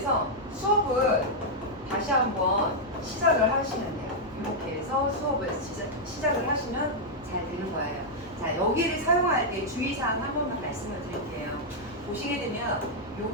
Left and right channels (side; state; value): both; normal; correlation -0.04